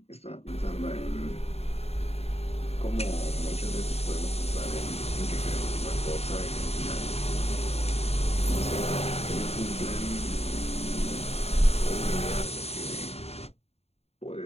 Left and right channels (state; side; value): late; right; 0.30 ms